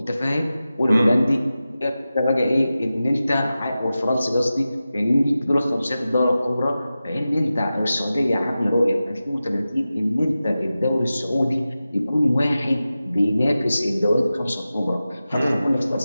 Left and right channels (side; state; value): both; inverted; correlation -0.94